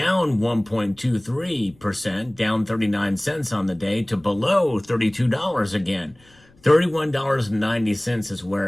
1.23%, down 39 cents on the day to below $32 again. $31.90 is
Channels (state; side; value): noise; left; rumble, 29 dB below the sound